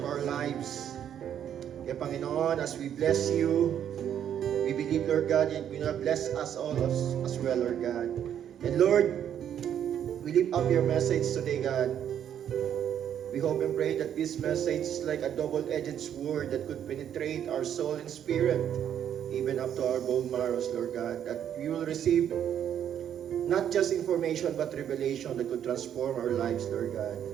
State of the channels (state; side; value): quieter; left; 9.6 dB